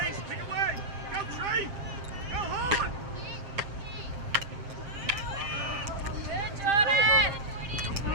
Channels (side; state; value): left; late; 7.5 ms